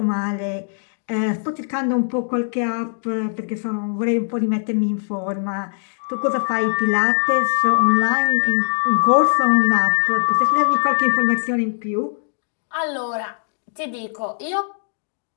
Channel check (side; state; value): right; silent; digital silence